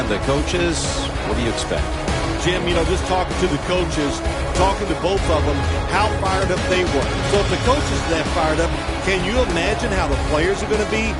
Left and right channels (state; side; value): identical; both; correlation 1.00